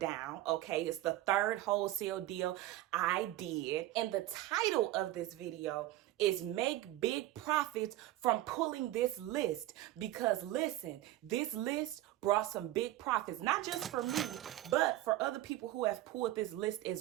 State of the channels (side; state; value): left; quieter; 15.3 dB